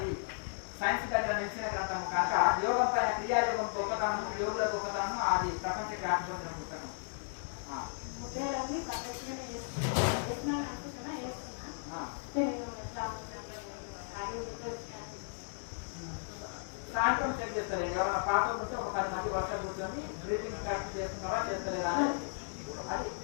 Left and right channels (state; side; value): silent; right; digital silence